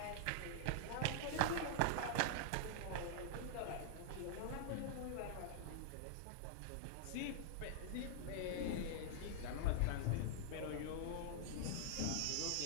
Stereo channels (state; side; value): different; both; correlation -0.01